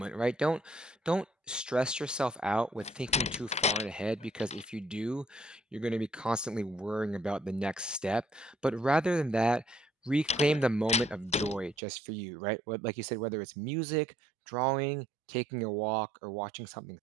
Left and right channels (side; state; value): left; drops out; at 11.8 s